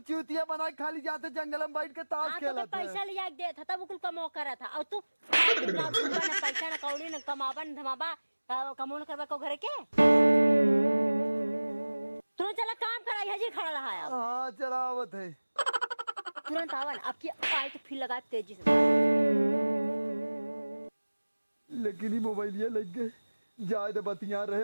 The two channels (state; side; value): inverted; both; correlation -1.00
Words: बना के खाली जाते, जंगल में बैठ के ताश हाँ, तो खेलत है। पैसा लिया के देता तब कुल कमो करा था। और तू ना पैसा ना कौड़ी ना कमाबा न धमाबा, कमो न करबा को घर के। तू चला काम करा, हजी खड़ा रहा है। हाँ चलावत है। तुरंत आवन, अब की आई तो फिर लगा तेजी से। लेकिन ही मोबाइल ये लग गए, जाए तो बतिया रहे,